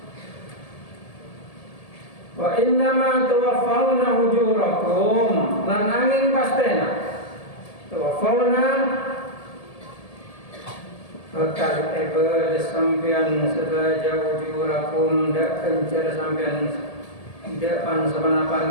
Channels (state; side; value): late; right; 1.7 ms